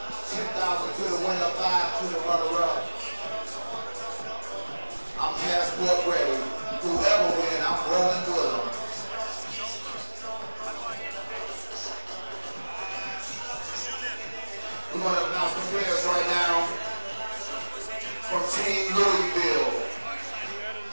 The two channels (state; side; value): inverted; both; correlation -1.00